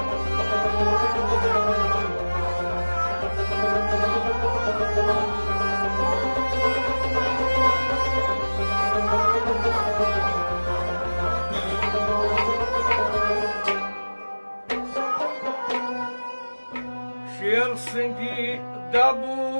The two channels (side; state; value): both; inverted; correlation -1.00